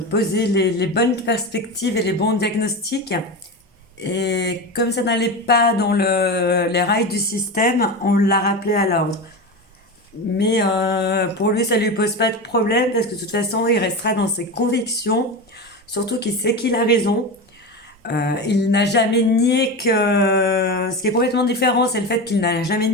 posé les bonnes perspectives et les bons diagnostics. Et comme ça n'allait pas dans les rails du système, on l'a rappelé à l'ordre. Mais pour lui, ça lui pose pas de problème parce que de toute façon, il restera dans ses convictions. Surtout qu'il sait qu'il a raison. Il n'a jamais nié que... Ce qui est complètement différent, c'est le fait qu'il n'a jamais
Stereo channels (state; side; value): normal; both; correlation 0.22